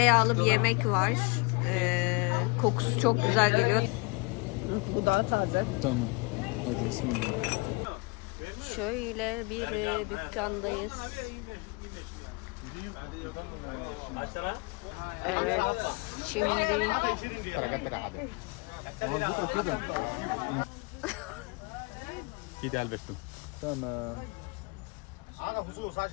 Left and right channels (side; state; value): right; quieter; 29.0 dB